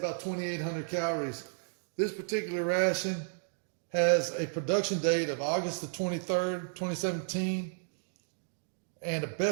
2,800 calories. This particular ration has a production date of August the 23rd, 2017, and a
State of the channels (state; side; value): silent; left; digital silence